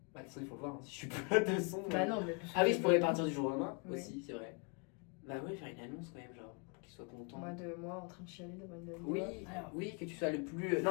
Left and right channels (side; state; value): right; quieter; 34.8 dB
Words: Bah de toute façon il faut le voir, hein. Si je suis plus là de son. Bah non, mais. Ah oui je pourrais partir du jour au lendemain Oui. aussi c'est vrai. Bah ouais faire une annonce quand même genre pour qu'il soit content. Moi en train de chialer devant une Oui, Alors, oui que tu sois le plus...